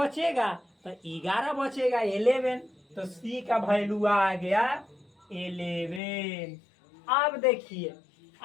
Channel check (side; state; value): right; drops out; at 6.0 s